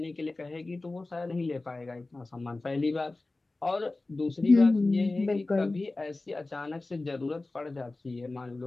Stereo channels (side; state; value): right; quieter; 3.1 dB